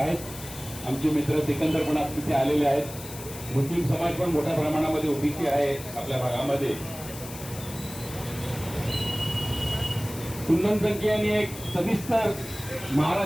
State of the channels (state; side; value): noise; left; hiss, 13 dB below the sound